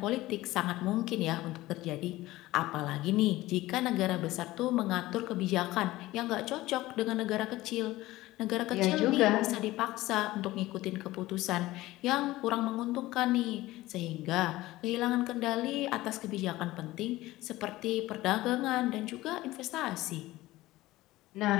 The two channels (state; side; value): quieter; right; 17.6 dB